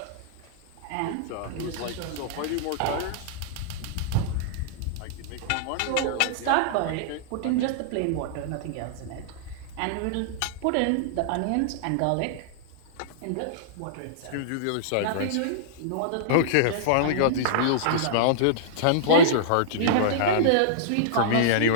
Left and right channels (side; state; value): both; different; correlation -0.02